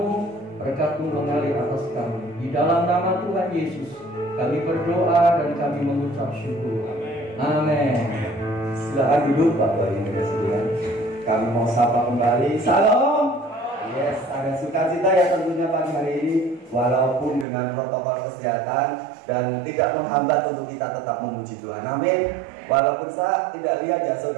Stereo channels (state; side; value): drops out; left; at 17.4 s